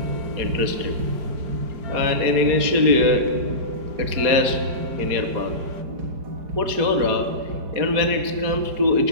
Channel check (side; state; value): left; late; 4.9 ms